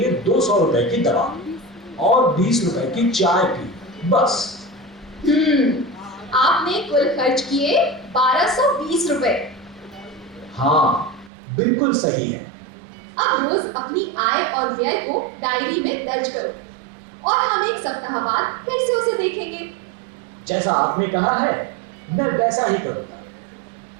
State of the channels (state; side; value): drops out; left; at 11.3 s